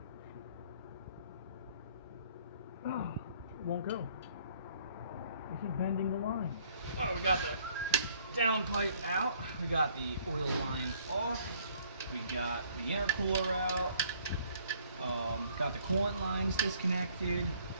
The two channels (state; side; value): inverted; both; correlation -0.60